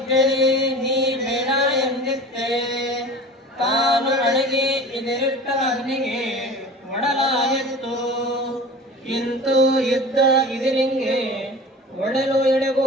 ನೀ ಬೇಡ ಎಂದಿದ್ದೆ. ತಾನು ಅಡಗಿ ಇದರಿಟ್ಟ ಅಗ್ನಿಗೆ ಒಡಲಾಯಿತು. ಇಂತೂ ಯುದ್ಧ ಇದರಿಂಗೆ ಒಡಲು ಎಡೆಗೂ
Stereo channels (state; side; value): normal; both; correlation 0.37